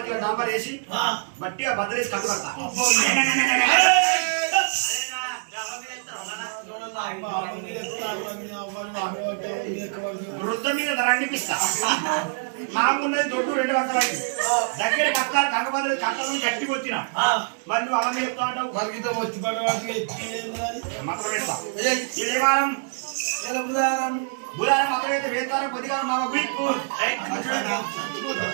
డాంబర్ వేసి బట్టిగా బద్దలేసి కట్టు కడతా వృద్ధ మీద రండిపిస్తా మాకున్నది దొడ్డు 2 పక్కలై దగ్గర కట్టాలి కంగబద్దలు కట్టాలని గట్టి వచ్చిన మరి నువ్వు అమ్మ చెప్తా ఉంటావు మరిగితో వచ్చి పడవాడికి మాత్రం వేస్తా ఏ వారం బుధారం మాత్రం అయితే వేస్తారా కొద్దిగా మామ గుడికు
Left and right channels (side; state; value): left; silent; digital silence